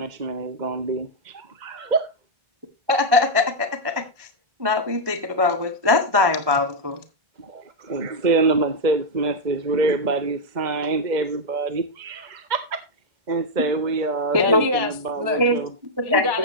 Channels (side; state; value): left; late; 1.2 ms